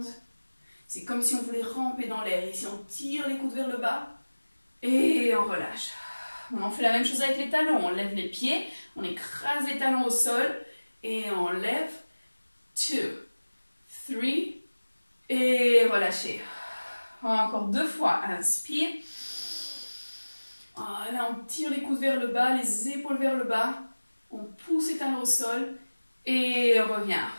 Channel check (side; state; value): both; inverted; correlation -1.00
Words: C'est comme si on voulait ramper dans l'air. Ici, on tire les coudes vers le bas. Et on relâche. On fait la même chose avec les talons. On lève les pieds. On écrase les talons au sol. Et on lève. 2, 3. Et relâchez. Encore 2 fois. Inspire. Là, on tire les coudes vers le bas. Les épaules vers le bas. On pousse les talons au sol. Et on revient.